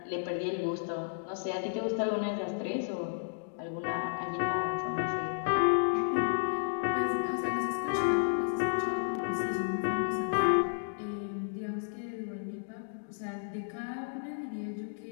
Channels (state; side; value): silent; right; digital silence